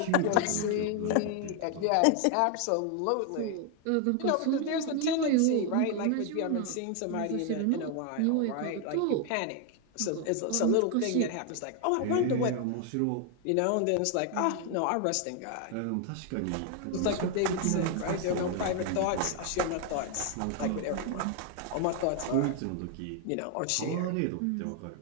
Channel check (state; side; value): different; both; correlation 0.00